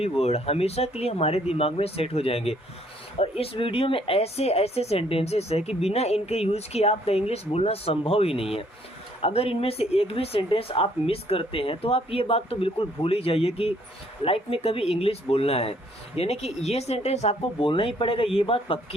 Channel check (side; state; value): both; normal; correlation 0.65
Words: वर्ड हमेशा के लिए हमारे दिमाग में सेट हो जाएंगे। और इस वीडियो में ऐसे ऐसे सेंटेंसेस है कि बिना इनके यूज किए आपका इंग्लिश बोलना संभव ही नहीं है। अगर इनमें से एक भी सेंटेंस आप मिस करते हैं तो आप ये बात तो बिल्कुल भूल ही जाइए कि लाइफ में कभी इंग्लिश बोलना है, यानी कि ये सेंटेंस आपको बोलना ही पड़ेगा, ये बात